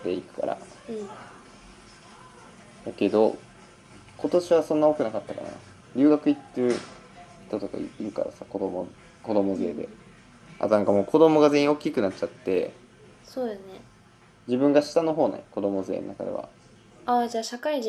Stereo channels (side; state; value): both; identical; correlation 1.00